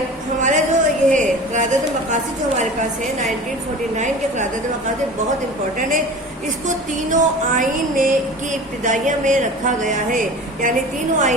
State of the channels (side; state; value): both; normal; correlation 0.37